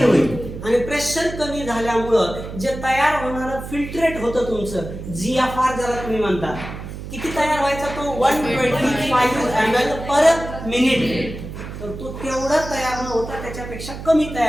होईल. आणि प्रेशर कमी झाल्यामुळं जे तयार होणारं फिल्ट्रेट होतं तुमचं GFR ज्याला तुम्ही म्हणता, किती तयार व्हायचा तो? 125 ml पर मिनिट. तर तो तेवढा तयार न होता त्याच्यापेक्षा कमी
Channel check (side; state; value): right; noise; hum, 10 dB below the sound